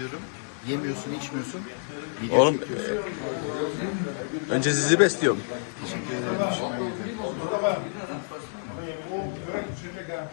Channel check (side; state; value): right; silent; digital silence